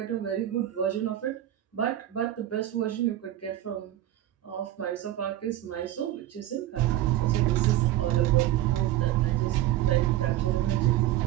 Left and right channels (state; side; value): quieter; left; 13.4 dB